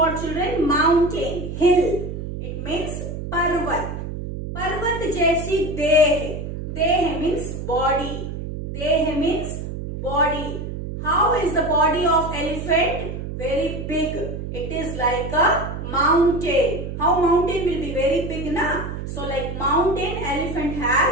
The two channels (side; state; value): right; noise; hum, 7 dB below the sound